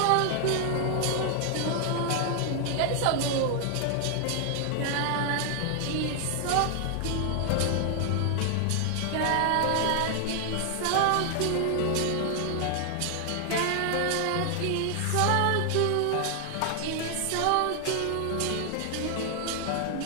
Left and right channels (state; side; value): different; both; correlation 0.00